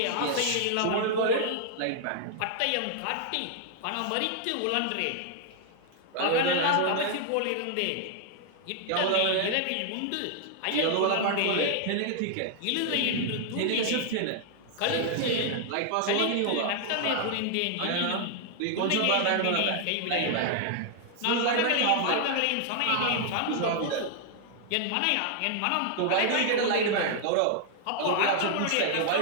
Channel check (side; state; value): both; different; correlation 0.00